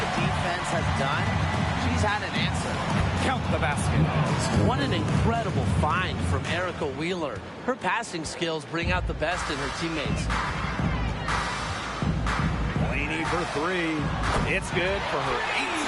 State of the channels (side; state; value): both; identical; correlation 1.00